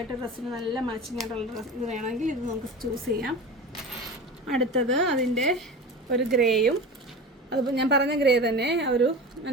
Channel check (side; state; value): both; normal; correlation 0.31